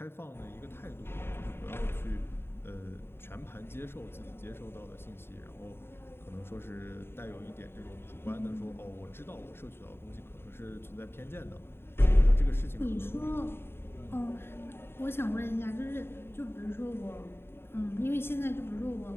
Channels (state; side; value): late; right; 0.11 ms